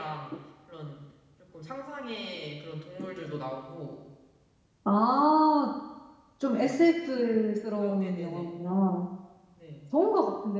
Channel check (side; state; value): both; identical; correlation 1.00